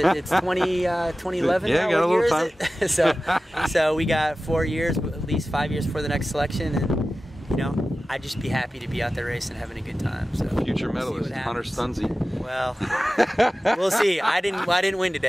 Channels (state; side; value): normal; both; correlation 0.95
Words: It's 2011 yeah, now. Got a little time. so we got 4 years, at least 5 years for the next selection, and you know, I'd just be happy to be out there racing, having a good time. So future medalist, Hunter Stunzi. Well, we'll see. I didn't win